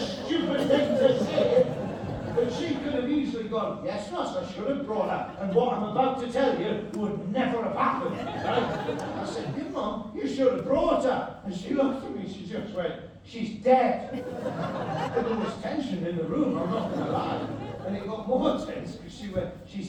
thing to say, but she could have easily gone, yes, Ross, I should have brought her, and what I'm about to tell you would never have happened, right? I said, your mum, you should have brought her. And she looked at me, she just went, she's dead. And there was tension in the room, I'm not going to lie. And it got more tense because she went,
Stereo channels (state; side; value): identical; both; correlation 1.00